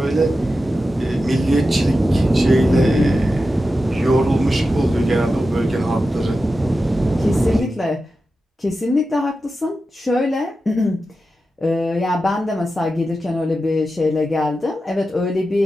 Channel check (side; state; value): both; normal; correlation 0.91